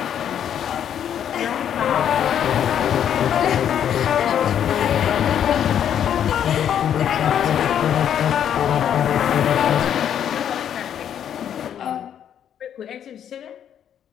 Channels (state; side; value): quieter; right; 9.4 dB